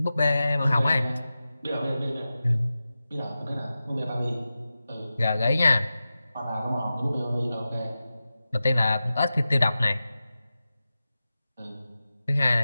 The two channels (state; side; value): inverted; both; correlation -0.94